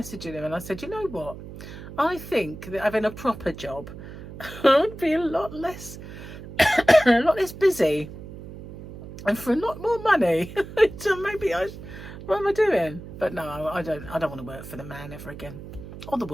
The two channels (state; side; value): noise; right; hum, 13 dB below the sound